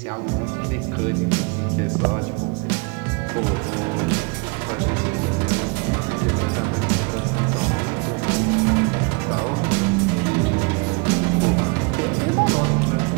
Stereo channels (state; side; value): quieter; left; 30.4 dB